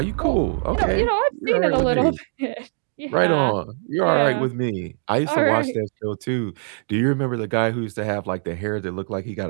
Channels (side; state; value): left; silent; 61 dB below the other